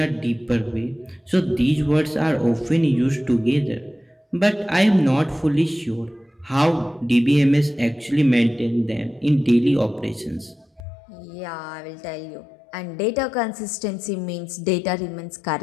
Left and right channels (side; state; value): right; drops out; at 10.9 s